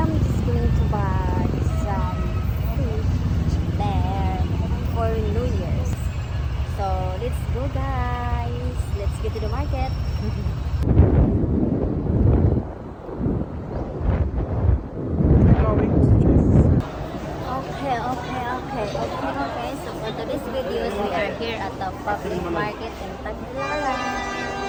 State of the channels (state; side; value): identical; both; correlation 1.00